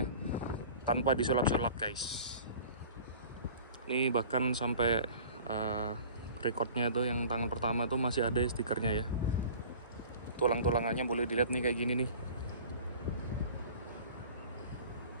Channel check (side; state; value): both; inverted; correlation -0.44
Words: tanpa disulap-sulap guys. Ini bahkan sampai recordnya tuh yang tangan pertama tuh masih ada stikernya ya. Tulang-tulangannya boleh dilihat nih kayak gini nih.